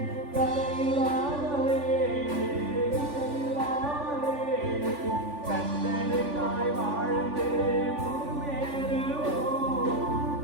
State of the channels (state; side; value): late; left; 3.5 ms